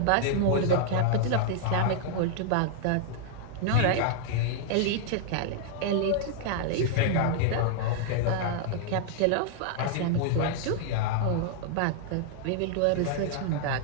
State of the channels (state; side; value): different; both; correlation -0.01